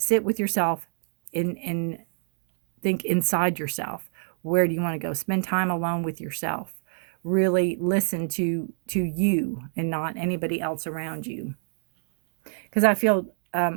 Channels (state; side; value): silent; left; digital silence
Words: with yourself and think inside yourself. Where do you want to go? Spend time alone with yourself. Really listen to you and not anybody else around you. Because I feel,